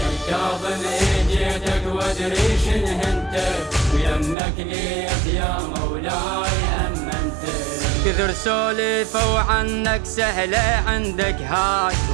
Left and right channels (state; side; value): drops out; left; at 4.4 s